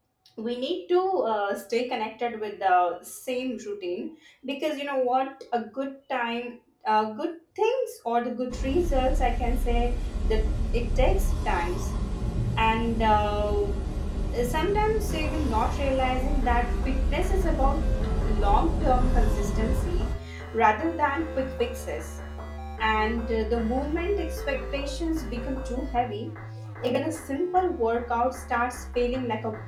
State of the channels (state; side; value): identical; both; correlation 1.00